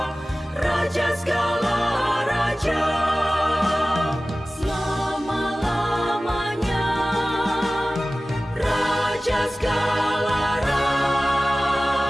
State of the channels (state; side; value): normal; both; correlation 0.97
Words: Raja segala raja, selama-lamanya, Raja segala raja.